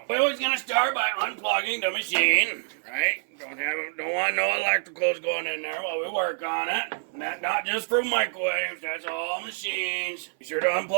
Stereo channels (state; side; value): silent; left; 60 dB below the other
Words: we're always gonna start by unplugging the machine, right? Don't want no electricals going in there while we work on it. Not just for microwaves, that's all machines. Be sure to